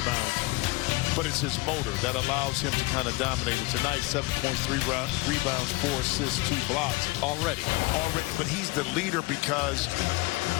But it's his motor that allows him to kind of dominate. And tonight, 7.3 rebounds, 4 assists, 2 blocks. Already. But he's the leader because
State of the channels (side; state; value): right; quieter; 22.8 dB